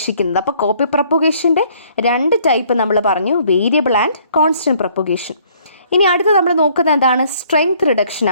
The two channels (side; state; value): both; inverted; correlation -0.61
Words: അപ്പോൾ കോപ്പി പ്രൊപ്പഗേഷൻ്റെ രണ്ട് ടൈപ്പ് നമ്മൾ പറഞ്ഞു, വേരിയബിൾ ആൻഡ് കോൺസ്റ്റൻറ്റ് പ്രൊപ്പഗേഷൻ. ഇനി അടുത്ത് നമ്മൾ നോക്കുന്നത് എന്താണ്? സ്ട്രെങ്ത് റിഡക്ഷൻ